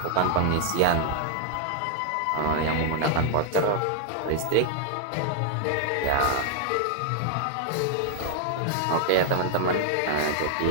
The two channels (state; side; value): different; both; correlation 0.00